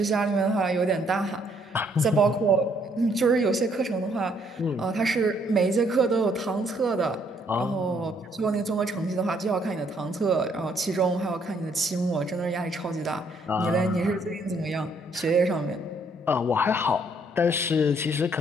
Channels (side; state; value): both; normal; correlation 0.67